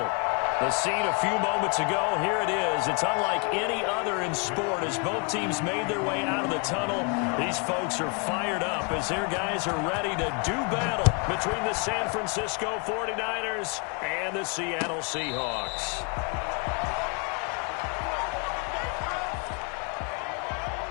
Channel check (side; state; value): right; quieter; 33.7 dB